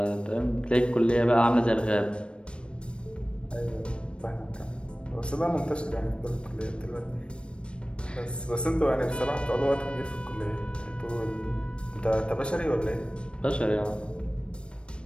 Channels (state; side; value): late; right; 0.057 ms